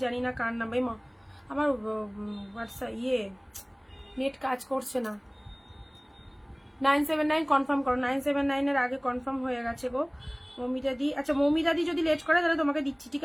জানি না কার নাম। মা আমার হোয়াটসঅ্যাপ নেট কাজ করছে না। 979 কনফার্ম করো। 979 আগে কনফার্ম হয়ে গেছে গো মৌমিতাদি। আচ্ছা মৌমিতাদি যদি লেট করে তাহলে তোমাকে দিচ্ছি, ঠিক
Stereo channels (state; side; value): identical; both; correlation 1.00